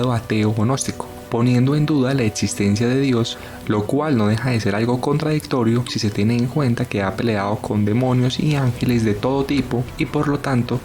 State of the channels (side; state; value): both; identical; correlation 1.00